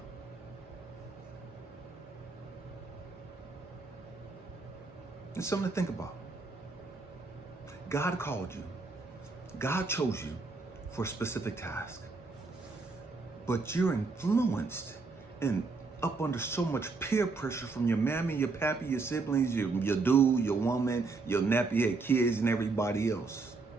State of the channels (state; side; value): quieter; left; 4.0 dB